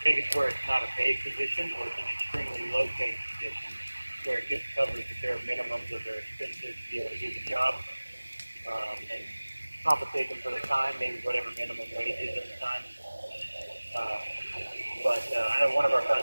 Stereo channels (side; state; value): both; inverted; correlation -1.00